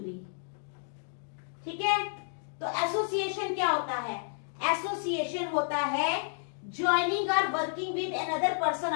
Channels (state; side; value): silent; right; digital silence